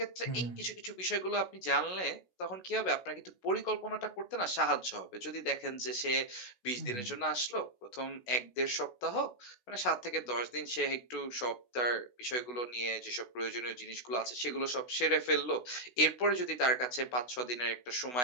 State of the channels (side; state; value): right; late; 16 ms